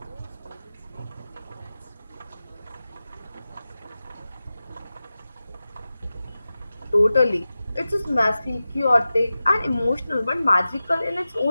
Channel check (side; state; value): both; inverted; correlation -0.95